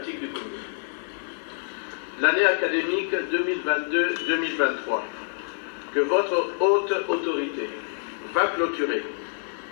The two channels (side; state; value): right; silent; digital silence